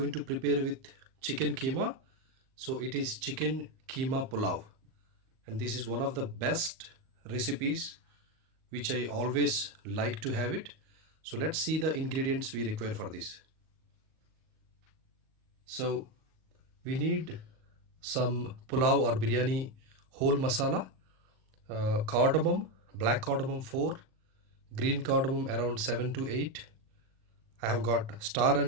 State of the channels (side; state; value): left; late; 38 ms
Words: to prepare with chicken keema. So it is chicken keema pulav, and this is one of the best recipes which I always like to have it. So let's see the ingredients we require for this. So we need some pulav or biryani whole masala, cardamom, black cardamom 4, green cardamom around 7 to 8. I have got star